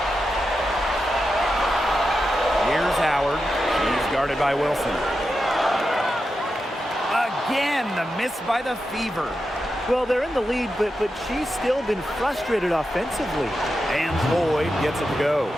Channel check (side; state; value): both; normal; correlation 0.89